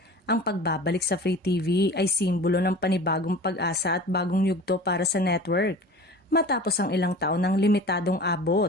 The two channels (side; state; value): both; normal; correlation 0.39